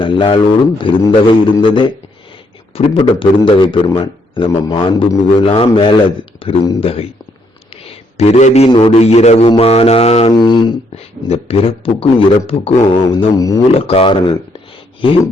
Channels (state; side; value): normal; both; correlation 0.72